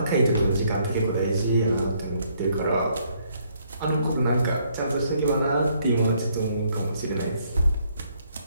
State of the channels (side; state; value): both; inverted; correlation -0.69